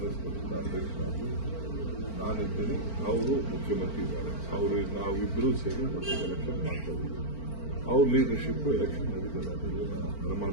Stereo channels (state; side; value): late; right; 4.4 ms